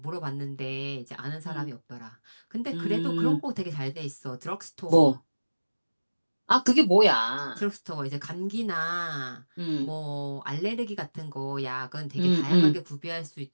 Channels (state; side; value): inverted; both; correlation -1.00